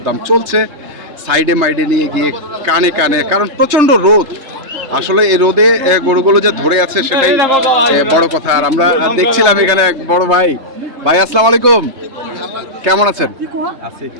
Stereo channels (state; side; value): late; left; 3.3 ms